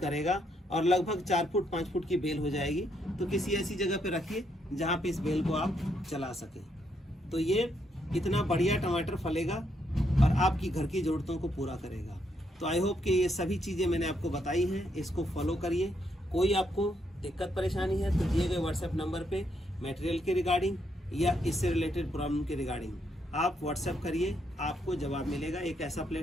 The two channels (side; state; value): both; normal; correlation 0.76